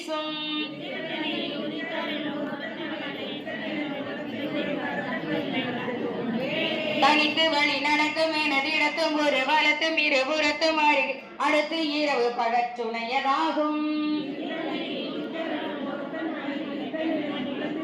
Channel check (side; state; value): both; identical; correlation 1.00